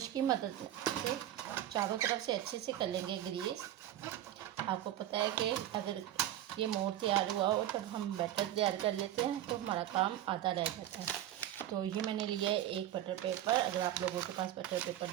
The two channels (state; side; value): quieter; left; 12.5 dB